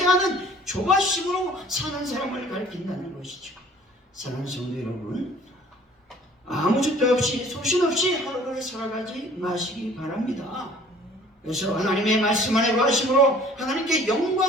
하는 조바심으로 사는 사람을 가리킨다는 것이죠. 사랑하는 성도 여러분, 아무 줏대 없이 소신 없이 하루를 살아가지 마시기 바랍니다. 그래서 하나님의 말씀 안에 거하심으로 하나님께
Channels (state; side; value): normal; both; correlation 0.52